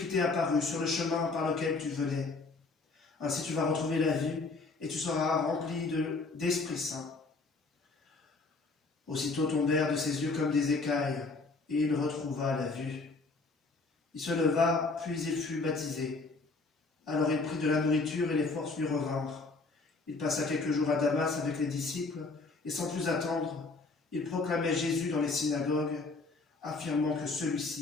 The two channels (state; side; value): quieter; right; 3.7 dB